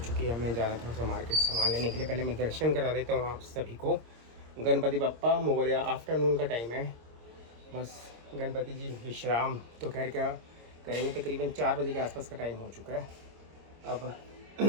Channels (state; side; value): late; left; 26 ms